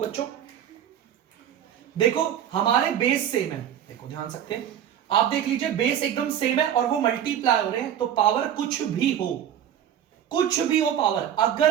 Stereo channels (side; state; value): left; quieter; 10.0 dB